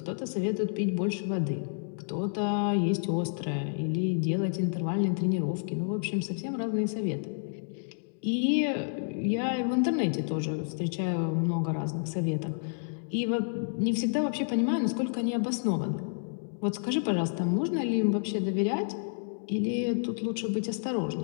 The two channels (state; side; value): silent; right; digital silence